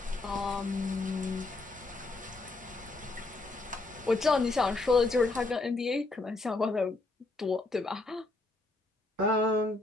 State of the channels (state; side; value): quieter; right; 3.2 dB